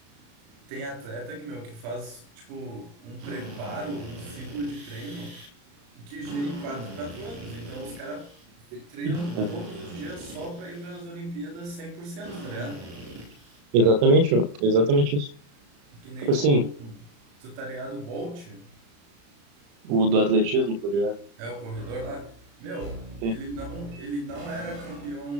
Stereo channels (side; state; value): left; late; 35 ms